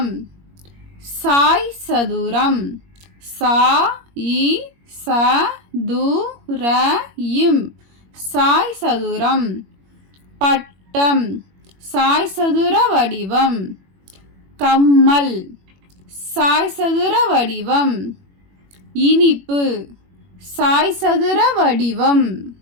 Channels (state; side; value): late; left; 21 ms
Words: சாய் சதுரம், சா இ ச து ர இம் சாய் சதுரம். பட்டம், சாய் சதுர வடிவம். கம்மல், சாய் சதுர வடிவம். இனிப்பு, சாய் சதுர வடிவம்.